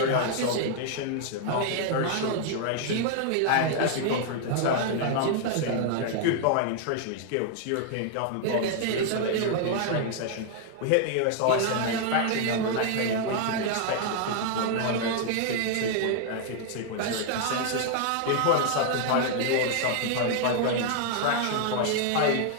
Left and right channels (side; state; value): both; different; correlation 0.00